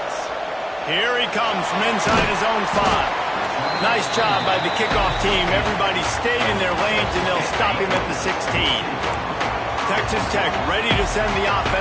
Here he comes from inside his own 5. Nice job by the kickoff team. Everybody stayed in their lanes, and they'll stop him at the 16. Texas Tech ready to send the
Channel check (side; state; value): both; identical; correlation 1.00